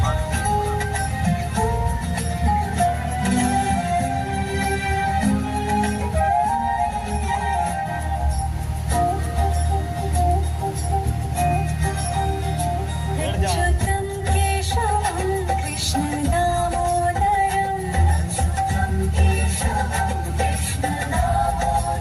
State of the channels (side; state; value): both; identical; correlation 1.00